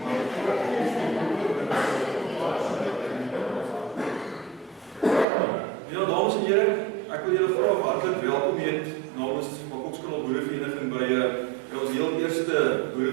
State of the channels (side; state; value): left; drops out; at 5.2 s